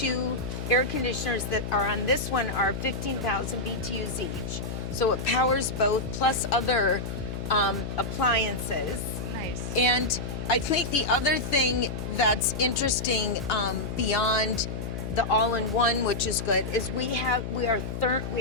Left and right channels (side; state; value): left; noise; hum, 5 dB below the sound